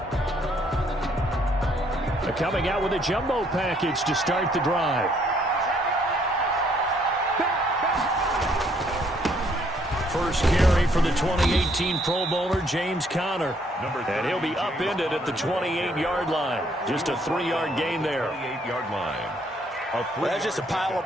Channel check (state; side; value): normal; both; correlation 0.67